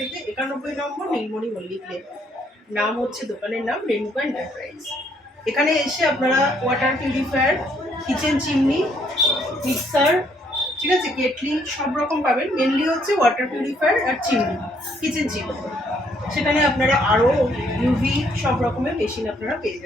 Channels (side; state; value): both; normal; correlation 0.68